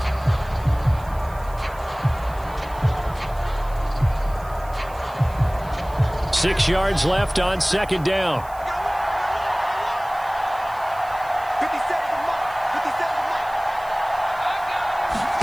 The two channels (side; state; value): right; noise; hiss, 23 dB below the sound